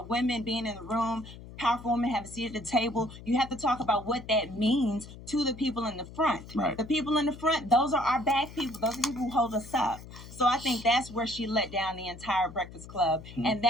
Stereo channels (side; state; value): left; noise; hum, 15 dB below the sound